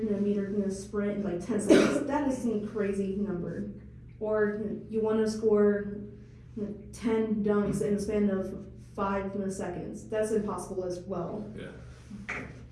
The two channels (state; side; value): identical; both; correlation 1.00